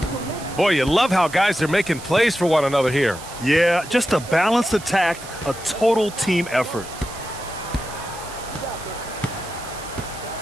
Boy, you love how guys are making plays for one another here. Yeah, just a balanced attack, a total team effort.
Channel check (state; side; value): noise; right; hiss, 15 dB below the sound